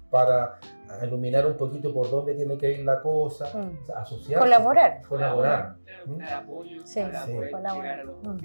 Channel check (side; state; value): both; inverted; correlation -1.00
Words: para iluminar un poquito por dónde tiene que ir la cosa, o sea, asociarse. Colaborar. Dar apoyo Sí, para poder colaborar. llegar a los